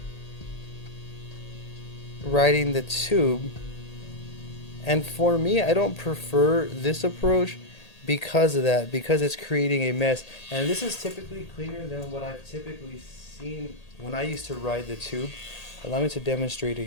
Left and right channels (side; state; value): right; late; 1.8 ms